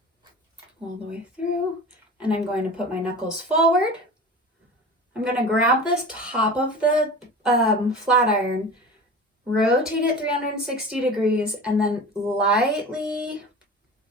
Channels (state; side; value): normal; both; correlation 0.35